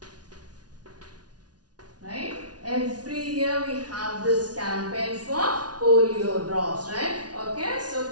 Right? Every year we have this campaign for polio drops, right? Okay, so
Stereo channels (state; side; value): late; left; 0.69 ms